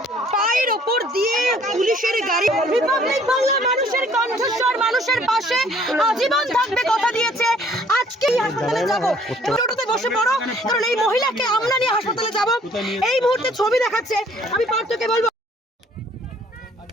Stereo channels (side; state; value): both; normal; correlation 0.59